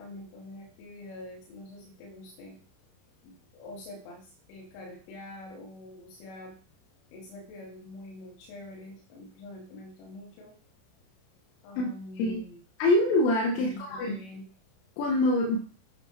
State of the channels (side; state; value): right; late; 32 ms